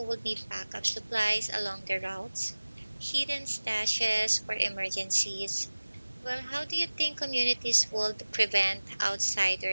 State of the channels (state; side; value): inverted; both; correlation -1.00